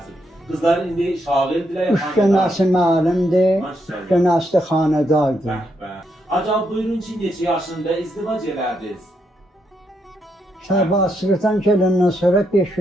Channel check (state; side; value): normal; both; correlation 0.79